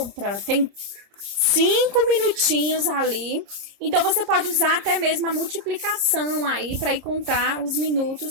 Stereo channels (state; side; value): late; left; 30 ms